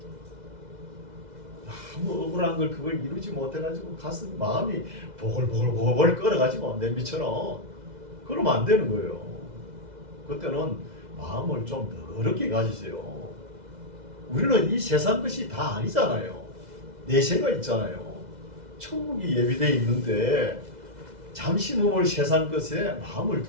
너무 억울한 걸 그걸 이루지 못해가지고 가슴 마음이 보글보글 끓어가지고 냄비처럼, 그러면 안 되는 거예요. 그때는 마음을 좀 넓게 가지세요. 우리는 이 세상 것이 다 아니잖아요. 내세가 있잖아요. 천국이 예비되어 있는데 잠시 몸을 세상 것에 마음을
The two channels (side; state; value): left; late; 2.0 ms